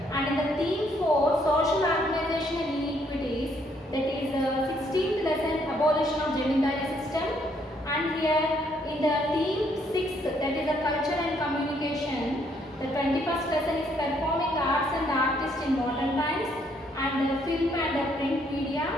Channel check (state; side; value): normal; both; correlation 0.69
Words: And in the theme 4, social organization and inequities. That is 16th lesson, abolition of Jamindari system. And here in the theme 6, that is the culture and communication. The 21st lesson is performing arts and artists in modern times. And film and print media,